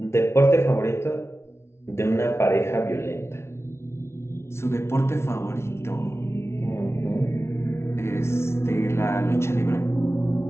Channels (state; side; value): late; right; 0.13 ms